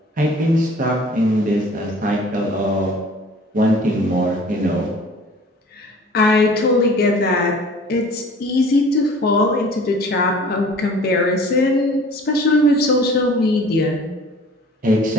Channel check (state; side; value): normal; both; correlation 0.47